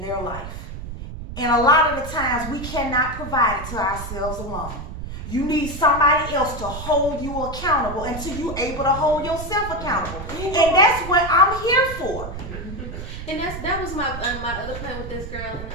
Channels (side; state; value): right; noise; rumble, 9 dB below the sound